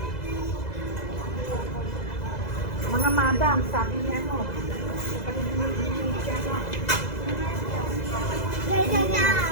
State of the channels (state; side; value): late; right; 2.0 ms